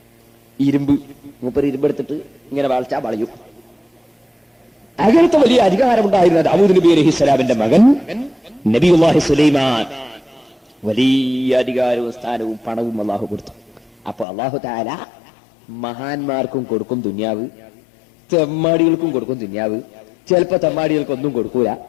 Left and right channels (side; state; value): right; drops out; at 14.2 s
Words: ഇരുമ്പ്. മൂപ്പര് ഇരുമ്പെടുത്തിട്ട് ഇങ്ങനെ വളച്ചാ വളയും. അങ്ങനത്തെ വലിയ അധികാരമുണ്ടായിരുന്ന ദാവൂദ് നബി അലൈഹിസ്സലാമിന്റെ മകൻ നബിയുല്ലാഹി സുലൈമാൻ വലിയ അധികാരവും സ്ഥാനവും പണവും അല്ലാഹു കൊടുത്തു. അപ്പൊ അല്ലാഹു തആല മഹാന്മാർക്കും കൊടുക്കും ദുനിയാവ്, തെമ്മാടികൾക്കും കൊടുക്കും ദുനിയാവ്. ചിലപ്പോ തെമ്മാടികൾക്കൊന്നും കൊടുക്കൂല,